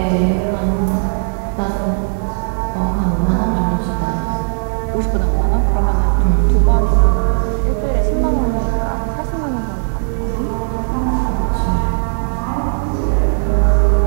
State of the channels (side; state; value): left; silent; digital silence